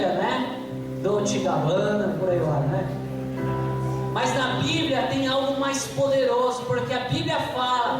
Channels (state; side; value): identical; both; correlation 1.00